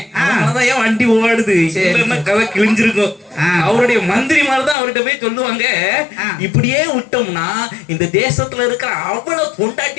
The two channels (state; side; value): drops out; right; at 4.8 s